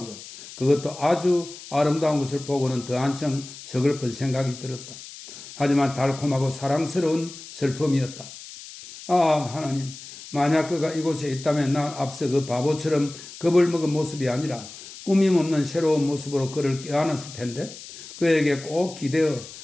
것, 그것도 아주 아름다운 것을 보고는 더 한층 서글픈 생각이 들었다. 하지만 달콤하고 사랑스러운 슬픔이었다. 아, 하나님, 만약 그가 이곳에 있다면 난 앞서 그 바보처럼 겁을 먹은 모습이 아니라 꾸밈없는 새로운 모습으로 그를 껴안았을 텐데, 그에게 꼭 기대어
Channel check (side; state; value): left; noise; hiss, 15 dB below the sound